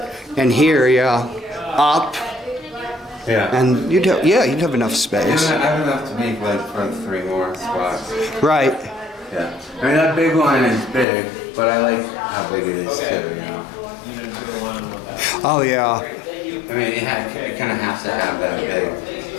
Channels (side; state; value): right; drops out; at 11.1 s